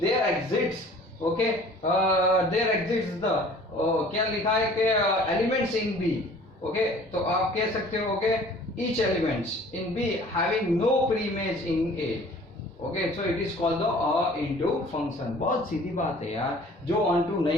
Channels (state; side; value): normal; both; correlation 0.50